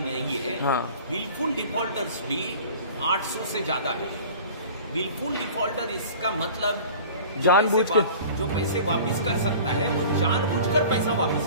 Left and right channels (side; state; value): both; inverted; correlation -0.43